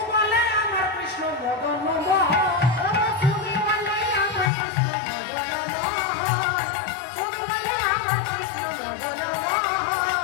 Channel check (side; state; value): right; drops out; at 4.5 s